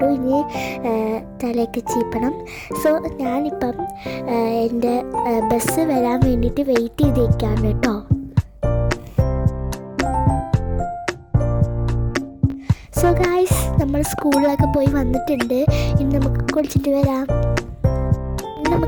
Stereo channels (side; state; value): both; identical; correlation 1.00